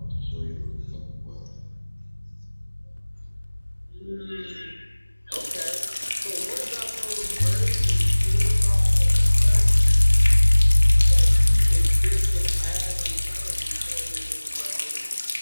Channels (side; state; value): both; inverted; correlation -1.00